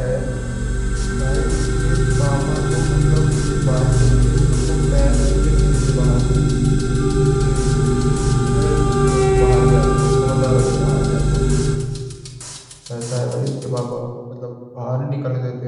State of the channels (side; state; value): both; identical; correlation 1.00